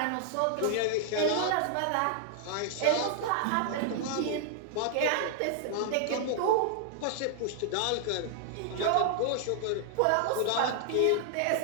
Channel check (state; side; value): different; both; correlation -0.01